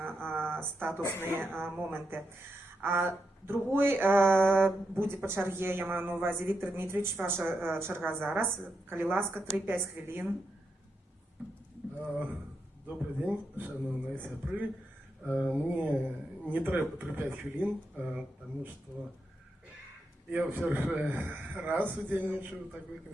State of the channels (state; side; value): normal; both; correlation 0.85